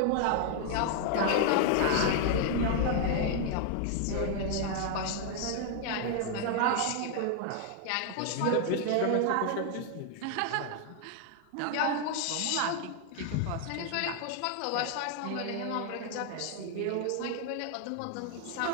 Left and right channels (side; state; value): both; different; correlation 0.00